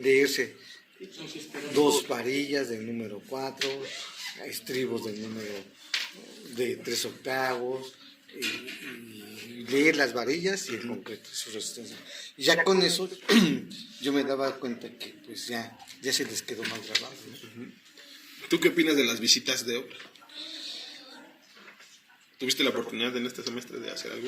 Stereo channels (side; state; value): both; identical; correlation 1.00